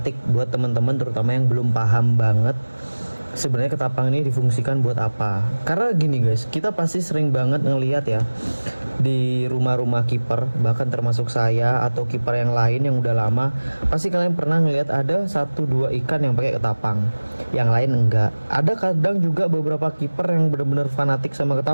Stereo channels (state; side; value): inverted; both; correlation -1.00